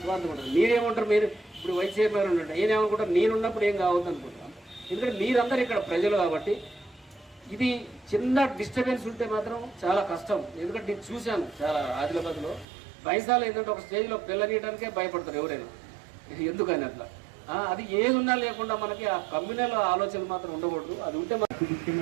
స్వార్థం ఉంటుంది. మీరేమంటారు, మీరు ఇప్పుడు వైస్ చైర్మన్ ఉండండి, నేనేమనుకుంటాను నేనున్నప్పుడు ఏం కావద్దు అనుకుంటున్నాను. ఎందుకంటే మీరందరూ ఇక్కడ ప్రజలు కాబట్టి ఇది చిన్న డిస్టర్బెన్స్ ఉంటే మాత్రం చాలా కష్టం. ఎందుకంటే నేను చూశాను చాలా ఆదిలాబాద్లో బైసాలు ఏంటంటే ఒక స్టేజ్లో పిల్లనీయడానికే భయపడతారు ఎవరైనా, ఎందుకని అట్లా. అది ఏది ఉన్నా లేకుండా మనకి ఆ కమ్యూనల్ ఆలోచన మాత్రం ఉండకూడదు. అది ఉంటే మనకి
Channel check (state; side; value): drops out; left; at 12.7 s